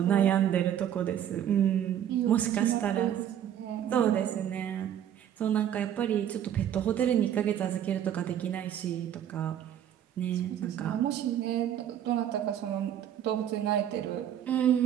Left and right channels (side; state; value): left; quieter; 10.2 dB